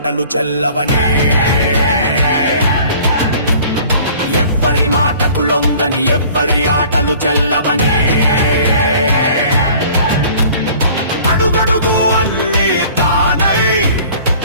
చెల్లవని ఎవ్వరి మాటకు లొంగని ఎవ్వరి ఆటలు చెల్లవని అడుగడుగు అన్ని తానై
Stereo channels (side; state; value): both; inverted; correlation -0.50